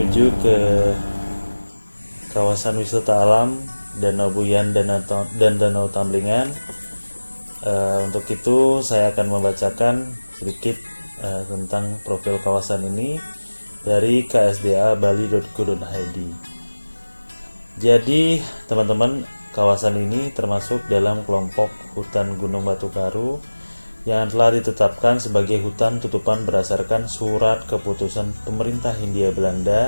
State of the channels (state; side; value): inverted; both; correlation -1.00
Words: ke kawasan wisata alam Danau Buyan dan Danau Tamblingan. Untuk itu saya akan membacakan sedikit tentang profil kawasan ini dari ksda.bali.go.id. Jadi teman-teman, kawasan ini termasuk dalam kelompok hutan Gunung Batu Karu yang telah ditetapkan sebagai hutan tutupan berdasarkan surat keputusan pemerintah Hindia